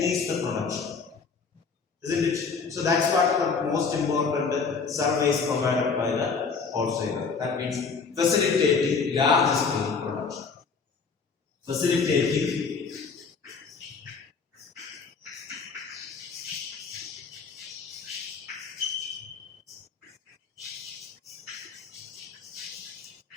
the production, isn't it? So, that's what the most important service provided by the wholesaler. That means facilitating large scale production. Facilitating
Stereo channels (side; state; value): right; quieter; 5.1 dB